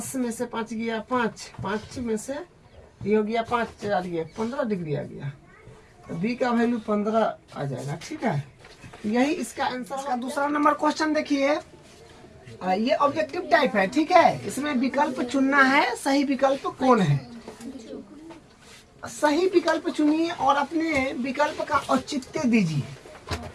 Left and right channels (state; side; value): identical; both; correlation 1.00